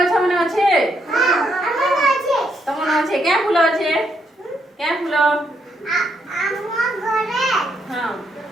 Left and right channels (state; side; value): normal; both; correlation 0.77